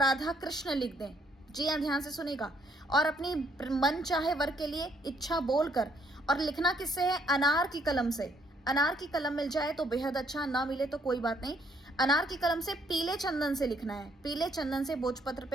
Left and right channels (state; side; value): normal; both; correlation 0.69